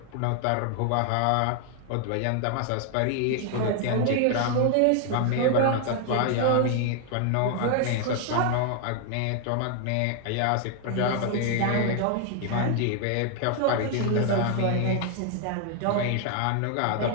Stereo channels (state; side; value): different; both; correlation 0.00